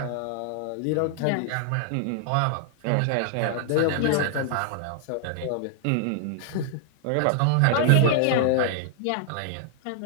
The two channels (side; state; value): both; different; correlation -0.01